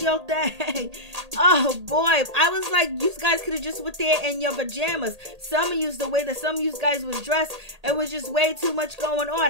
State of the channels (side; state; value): left; late; 1.8 ms